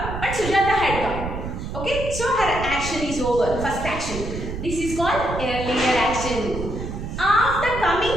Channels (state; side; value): noise; right; rumble, 7 dB below the sound